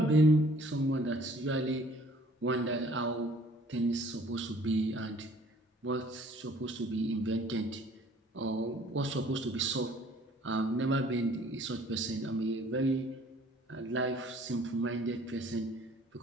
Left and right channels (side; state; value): both; normal; correlation 0.56